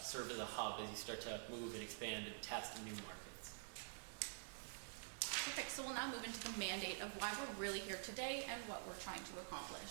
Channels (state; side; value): silent; left; digital silence